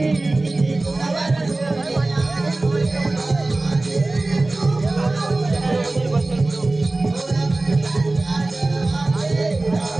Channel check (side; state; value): left; quieter; 3.0 dB